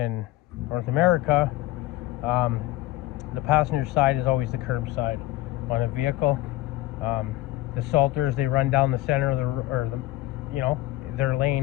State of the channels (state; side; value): quieter; right; 16.9 dB